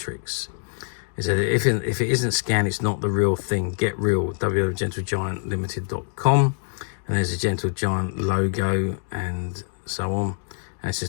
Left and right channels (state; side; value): silent; right; digital silence